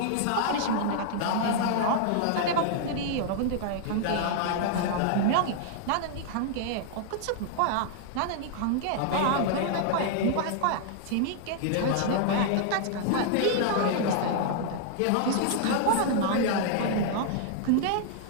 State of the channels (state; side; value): different; both; correlation -0.01